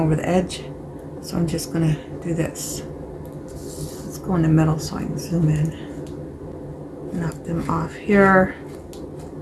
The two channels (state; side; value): identical; both; correlation 1.00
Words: the edge. So I'm just gonna do this. Let's go in the middle so I can zoom in. Knock them off here.